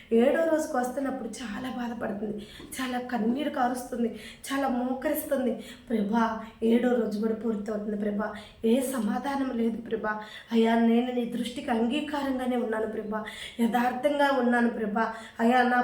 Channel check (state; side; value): identical; both; correlation 1.00